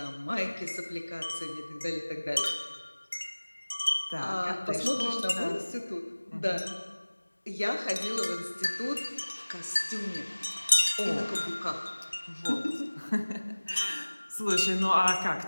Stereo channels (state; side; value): inverted; both; correlation -1.00